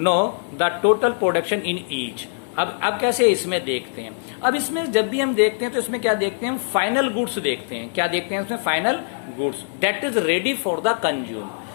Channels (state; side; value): silent; right; 56 dB below the other